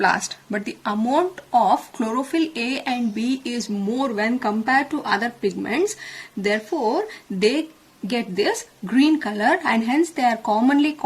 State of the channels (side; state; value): both; identical; correlation 1.00